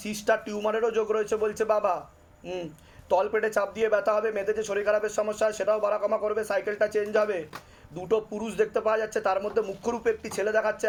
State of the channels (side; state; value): both; identical; correlation 1.00